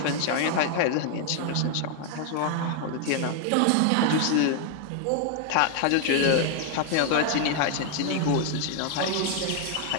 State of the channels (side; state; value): both; different; correlation 0.00